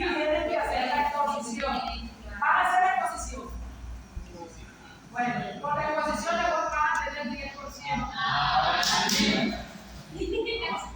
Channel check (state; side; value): identical; both; correlation 1.00